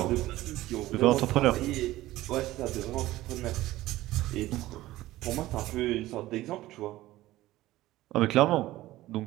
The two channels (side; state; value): left; quieter; 16.5 dB